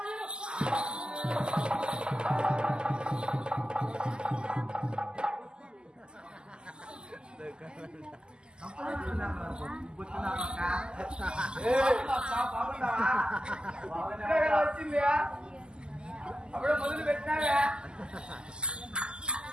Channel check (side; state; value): left; late; 0.047 ms